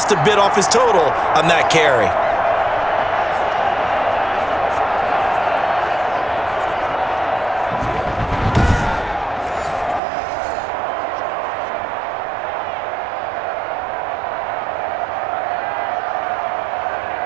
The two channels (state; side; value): drops out; left; at 10.0 s